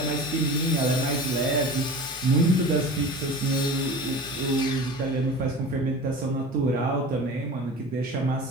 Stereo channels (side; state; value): both; normal; correlation 0.35